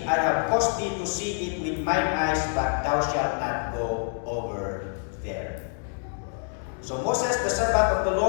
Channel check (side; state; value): right; silent; 59 dB below the other